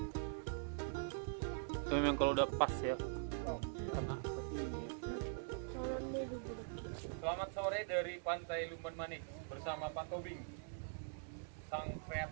Itu memang kalau udah pas ya. Oh. Karena seperti ini. Selamat sore dari Pantai Lumban Manik bersama Pak Tobing, sang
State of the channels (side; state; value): left; silent; digital silence